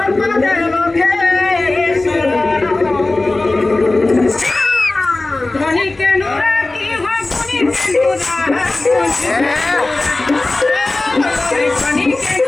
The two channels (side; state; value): right; quieter; 3.0 dB